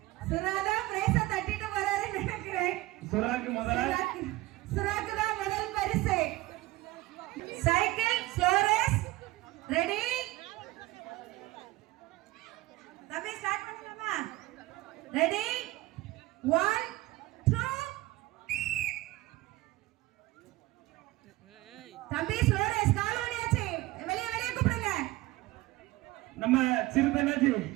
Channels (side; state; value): left; quieter; 18.9 dB